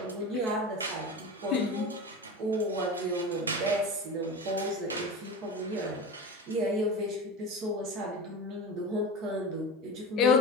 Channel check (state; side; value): normal; both; correlation 0.28